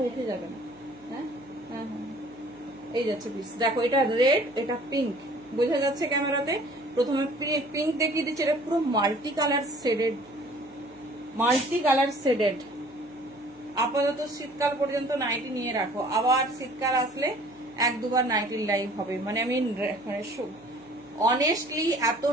উঠে যাবে না। হ্যাঁ হ্যাঁ হ্যাঁ, এই যাচ্ছে পিস। দেখো, এটা রেড, এটা পিঙ্ক, বোঝা যাচ্ছে ক্যামেরাতে। প্রথমে পিঙ্ক দেখিয়ে দিচ্ছি, এটা পুরো মাল্টি কালার শেডেড। আপাতত শীতকাল পর্যন্ত নাইটি নিয়ে রাখো, আবার শীতকাল আসলে 1-2বার নাইটির লাইভ হবে। মানে আমি অনেস্টলি এত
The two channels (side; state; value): left; noise; hum, 27 dB below the sound